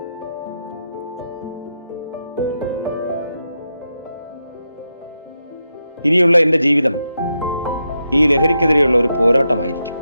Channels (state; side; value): inverted; both; correlation -0.85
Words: ഇനിയുള്ള എന്റെ ജീവിതം ഈ ലഹരിക്കെതിരെയുള്ള ഒരു പോരാട്ടമായിരിക്കും.